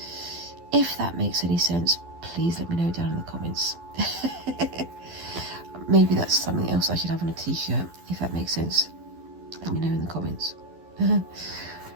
If that makes any sense, please let me know down in the comments. Maybe that's something else I should have on a t-shirt, if that makes sense. Let me know in the comments. Yeah.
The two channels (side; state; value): left; late; 12 ms